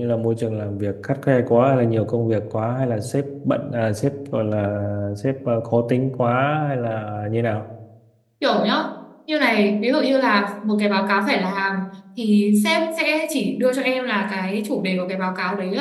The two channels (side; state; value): both; identical; correlation 1.00